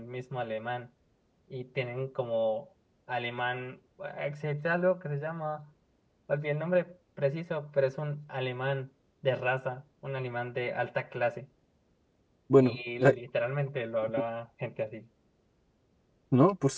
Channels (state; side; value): identical; both; correlation 1.00